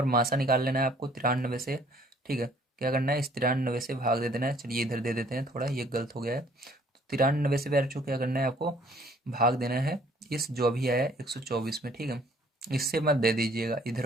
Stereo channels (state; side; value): normal; both; correlation 0.59